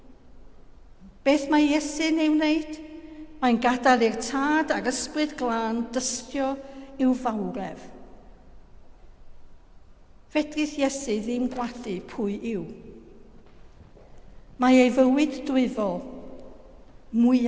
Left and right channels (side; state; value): both; identical; correlation 1.00